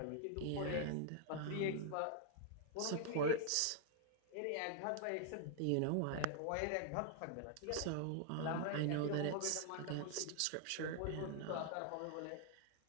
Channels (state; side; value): different; both; correlation -0.01